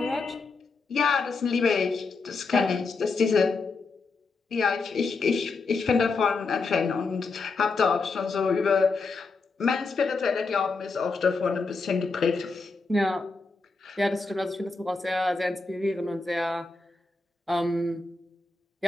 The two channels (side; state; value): right; quieter; 4.1 dB